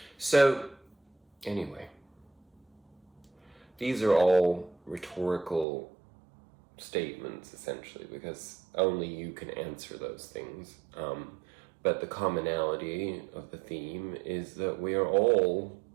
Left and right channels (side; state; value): left; drops out; at 5.7 s